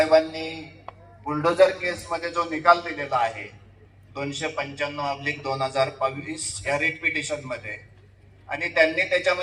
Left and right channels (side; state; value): both; identical; correlation 1.00